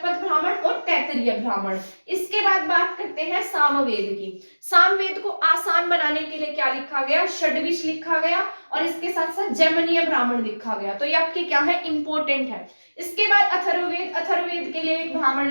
ब्राह्मण और तैत्तिरीय ब्राह्मण। इसके बाद बात करते हैं सामवेद की। सामवेद को आसान बनाने के लिए क्या लिखा गया? षड्विश लिखा गया, और इसके साथ साथ जैमिनीय ब्राह्मण लिखा गया। तो ये आपके क्या है? इंपॉर्टेंट है। इसके बाद अथर्ववेद, अथर्ववेद के लिए एक ब्राह्मण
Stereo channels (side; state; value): both; inverted; correlation -1.00